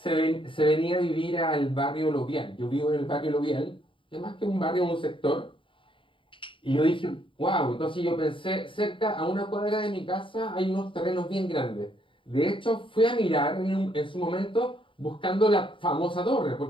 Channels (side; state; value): right; late; 0.25 ms